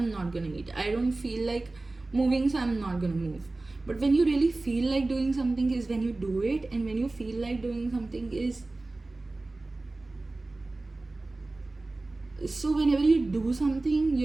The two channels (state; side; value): quieter; left; 3.1 dB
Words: not gonna eat, I don't feel like moving, so I'm not gonna move. But when you really feel like doing something is when you do it, and when you feel like doing something is, so whenever you do something